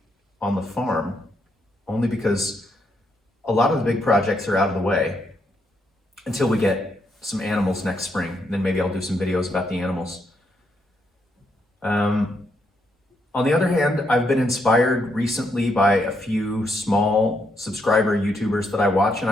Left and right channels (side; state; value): both; normal; correlation 0.77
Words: on the farm, only because a lot of the big projects are out of the way until we get some animals next spring. Then maybe I'll do some videos about the animals. On the other hand, I've been inspired recently by a few small subscriber YouTubers that I watch, and